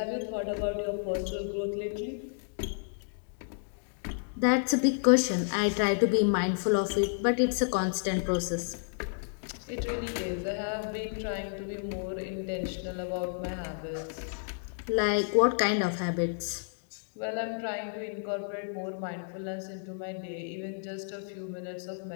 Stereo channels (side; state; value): right; silent; digital silence